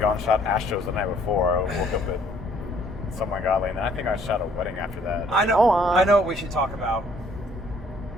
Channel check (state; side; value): normal; both; correlation 0.62